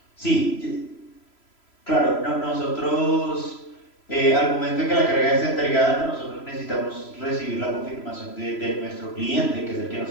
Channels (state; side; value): late; right; 3.0 ms